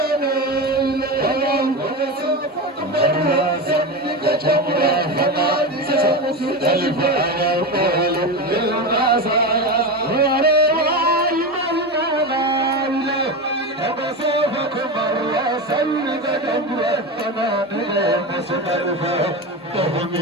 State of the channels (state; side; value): normal; both; correlation 0.20